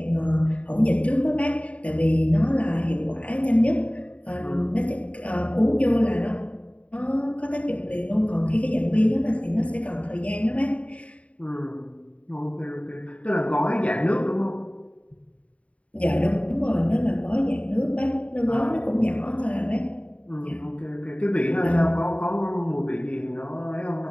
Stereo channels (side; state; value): right; late; 0.065 ms